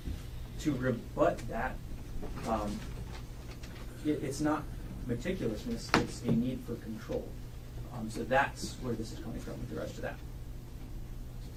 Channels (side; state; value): both; identical; correlation 1.00